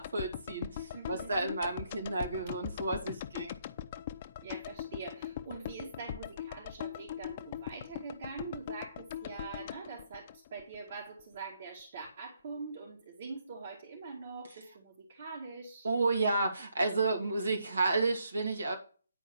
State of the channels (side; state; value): both; inverted; correlation -0.72